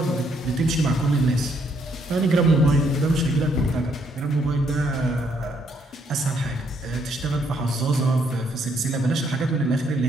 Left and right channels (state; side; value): normal; both; correlation 0.71